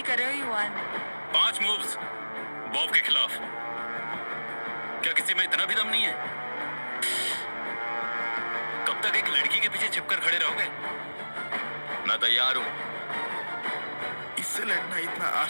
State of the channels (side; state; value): both; inverted; correlation -1.00